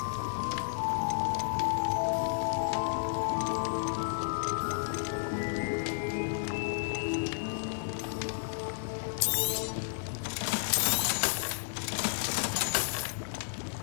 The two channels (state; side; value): silent; right; 56 dB below the other